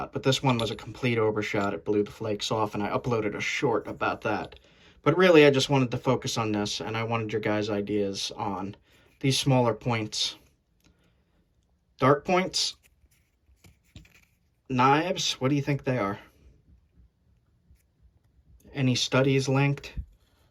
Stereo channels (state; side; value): identical; both; correlation 1.00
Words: But this one was a complete overshot. It blew the flakes off, and I uploaded a short about that. But really, I just wanted to focus on this, and I wanted your guys' ideas on these smaller points. Dart points? Knives? What do you think they are? Any studies linked